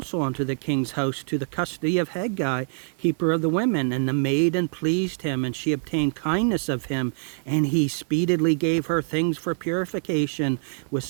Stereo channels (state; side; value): silent; left; 57 dB below the other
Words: unto the king's house, to the custody of Hegai, keeper of the women. And the maiden pleased him, and she obtained kindness of him, and he speedily gave her things for purification, with